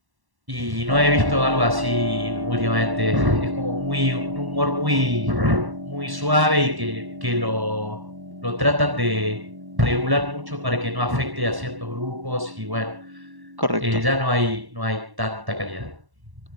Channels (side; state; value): left; late; 1.1 ms